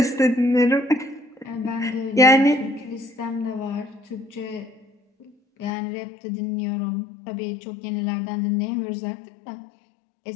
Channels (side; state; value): right; drops out; at 5.7 s